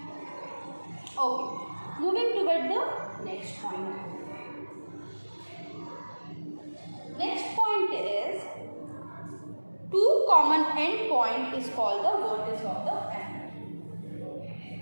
Okay, moving toward the next point. Next point is two common end point is called the vertex of the angle.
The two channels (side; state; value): both; inverted; correlation -1.00